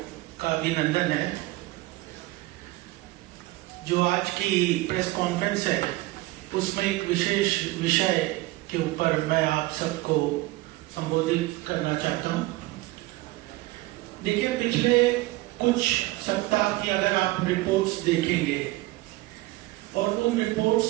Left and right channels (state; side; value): quieter; left; 19.7 dB